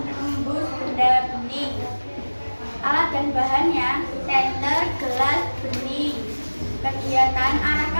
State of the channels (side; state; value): both; inverted; correlation -1.00